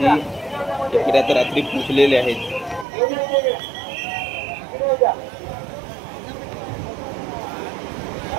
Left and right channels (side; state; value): left; drops out; at 2.9 s